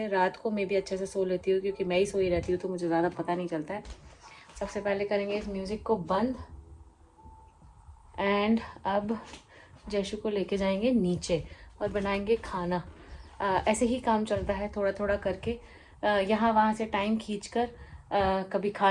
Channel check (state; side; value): identical; both; correlation 1.00